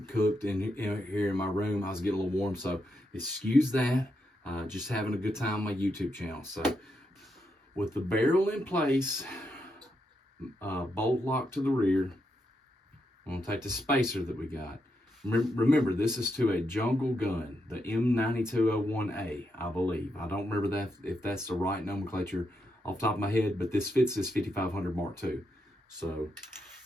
cooked in here in my room. I was getting a little warm, so excuse that. Just having a good time on my YouTube channel. So with the barrel in place, bolt lock to the rear, I'm going to take the spacer that we got. Remember, this is to a jungle gun, the M9201A, I believe. I don't remember that if that's the right nomenclature off the top of my head, but this fits this 5500 Mark II. So,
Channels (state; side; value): normal; both; correlation 0.82